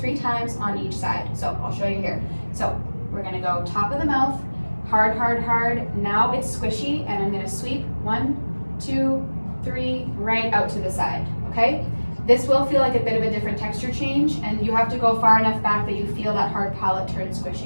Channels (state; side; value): inverted; both; correlation -1.00